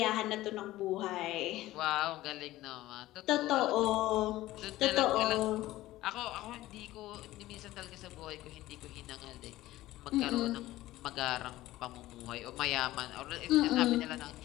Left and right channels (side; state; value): right; quieter; 16.3 dB